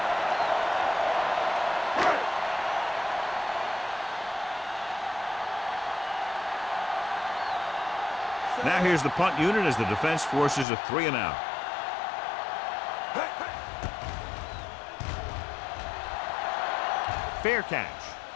Now here's the punt unit as the defense forces a 3-and-out. Fair catch.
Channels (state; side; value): drops out; right; at 10.7 s